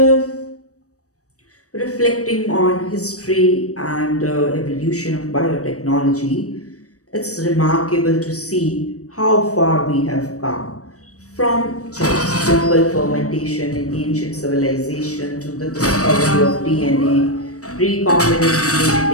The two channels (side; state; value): right; late; 0.66 ms